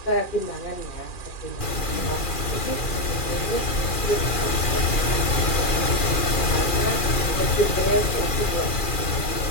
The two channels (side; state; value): right; late; 2.4 ms